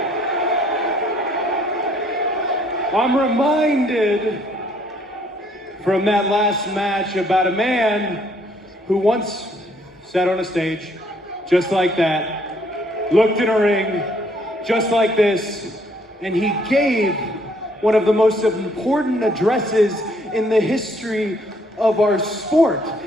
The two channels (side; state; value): both; normal; correlation 0.65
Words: I'm reminded from that last match about a man who once sat on a stage just like that, looked in a ring just like this, and he gave one of the most important addresses in the history of our sport.